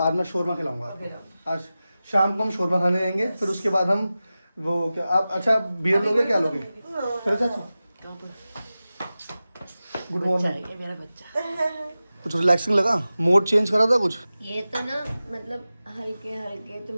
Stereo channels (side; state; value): both; inverted; correlation -0.95